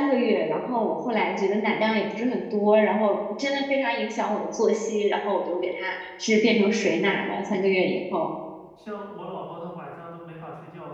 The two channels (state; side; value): identical; both; correlation 1.00